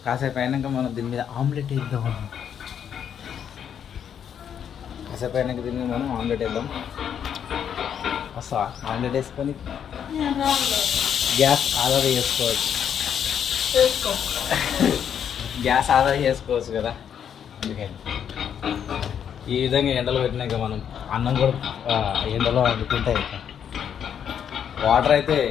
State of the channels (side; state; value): right; quieter; 8.5 dB